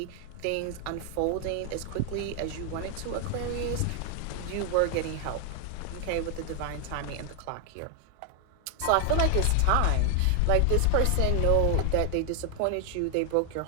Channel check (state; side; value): different; both; correlation 0.00